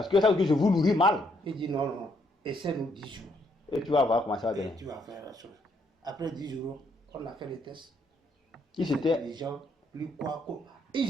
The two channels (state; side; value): normal; both; correlation 0.72